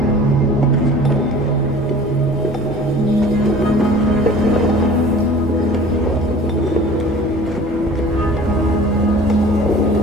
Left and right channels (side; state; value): both; normal; correlation 0.45